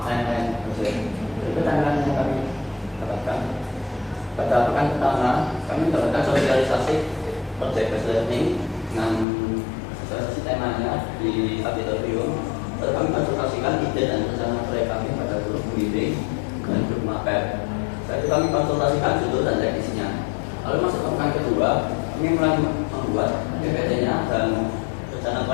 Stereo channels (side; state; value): right; drops out; at 9.2 s